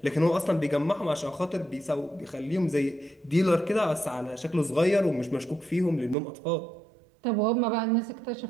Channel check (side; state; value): left; drops out; at 6.2 s